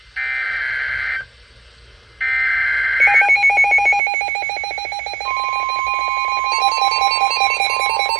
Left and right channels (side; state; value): left; drops out; at 4.0 s